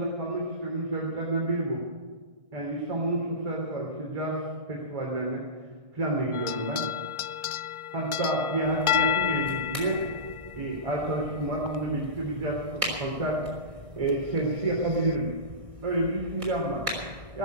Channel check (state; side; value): late; left; 1.6 ms